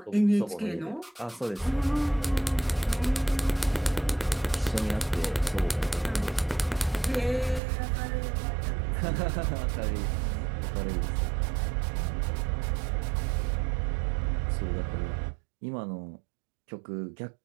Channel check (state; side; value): drops out; left; at 7.6 s